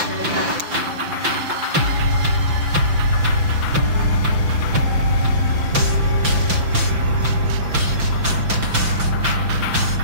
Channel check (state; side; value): late; left; 5.9 ms